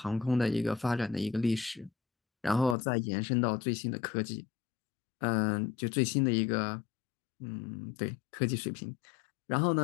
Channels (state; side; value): drops out; right; at 2.8 s